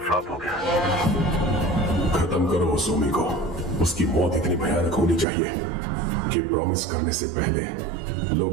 फ्लॉप हो गया। खत्म करो उस ओमी को। उसकी मौत इतनी भयानक होनी चाहिए कि प्रॉमिस करने से पहले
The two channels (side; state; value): left; drops out; at 5.2 s